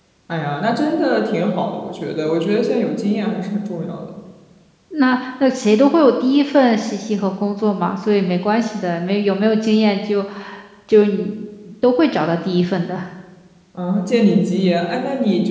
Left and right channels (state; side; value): identical; both; correlation 1.00